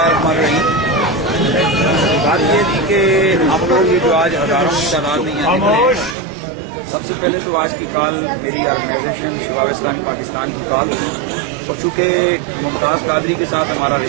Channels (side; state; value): left; drops out; at 6.2 s